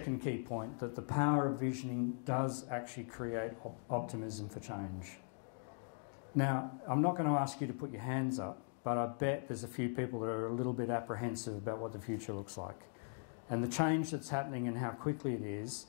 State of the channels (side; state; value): right; silent; 51 dB below the other